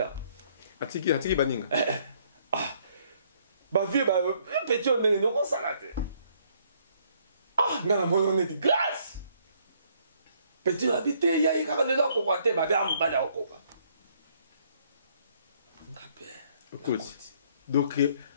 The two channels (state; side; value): inverted; both; correlation -0.66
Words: atiki baninga ba vie ba petit on ne ko salate ngana moyo ne di grâce petit habité ya ikaka le ko kwate ba ba mbada ko kwa écoute donc